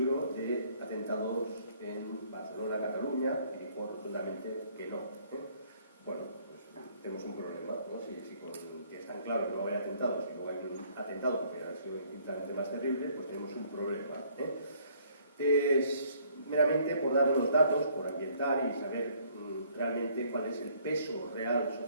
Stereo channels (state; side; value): inverted; both; correlation -0.62